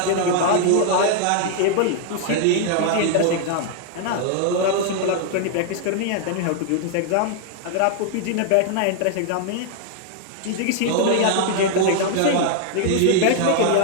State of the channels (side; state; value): both; different; correlation 0.00